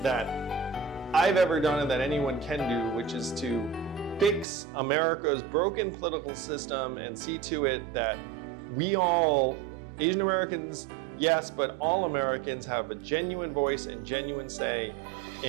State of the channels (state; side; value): drops out; left; at 4.5 s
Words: that I've ever done and that anyone can do, which is to fix America's broken political system and see to it that we all, Asian Americans, yes, but all Americans have a genuine voice and genuine say